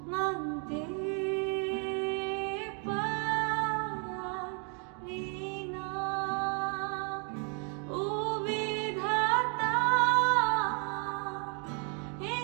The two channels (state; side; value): quieter; left; 38.3 dB